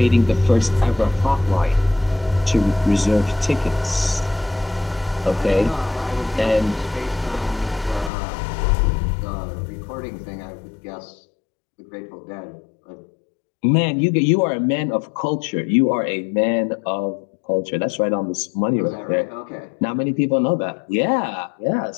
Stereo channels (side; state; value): right; drops out; at 8.1 s